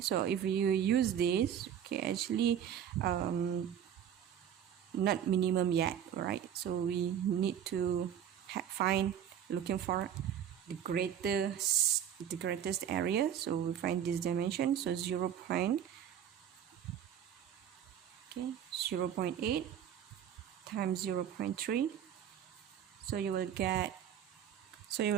so if you use this, okay, actually not minimum yet, right? So we need to find, looking for the greatest area. So we find this dimension, so 0.8 times 0.3, so you will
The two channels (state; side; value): quieter; left; 9.4 dB